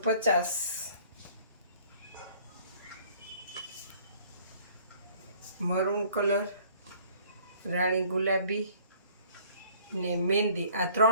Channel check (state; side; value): inverted; both; correlation -0.55